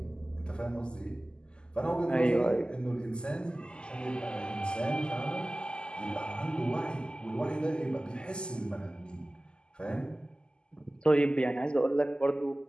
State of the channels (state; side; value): late; right; 0.048 ms